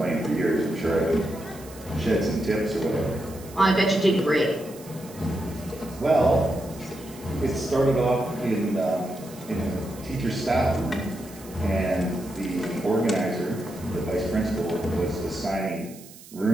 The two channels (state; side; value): noise; right; hiss, 19 dB below the sound